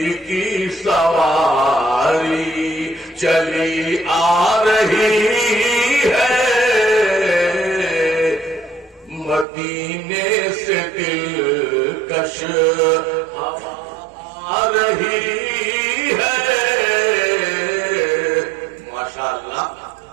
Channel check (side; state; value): left; drops out; at 9.5 s